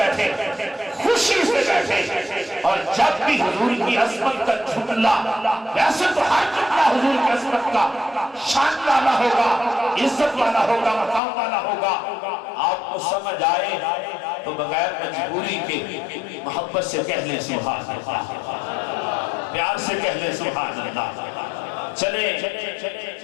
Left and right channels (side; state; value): right; drops out; at 11.2 s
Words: خوشی سے بیٹھے، اور جب بھی حضور کی عظمت کا جملہ، ویسے تو ہر جملہ حضور کی عظمت کا شان والا ہوگا، عزت والا ہوگا، مقام والا ہوگا، آپ کو سمجھ آئے تو بغیر مجبوری کے محبت سے کہہ لیں سبحان اللہ، پیار سے کہہ لیں سبحان اللہ، چلیں